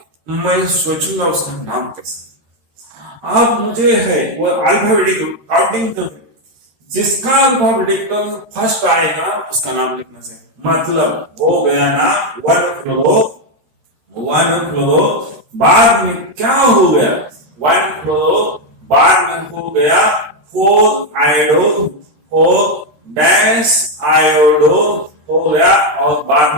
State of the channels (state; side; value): late; left; 13 ms